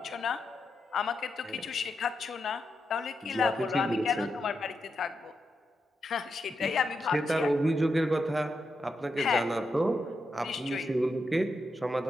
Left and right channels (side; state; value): both; normal; correlation 0.85